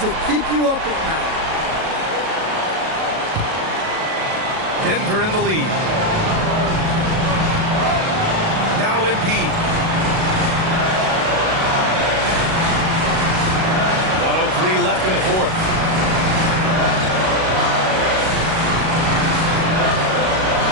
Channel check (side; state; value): left; late; 37 ms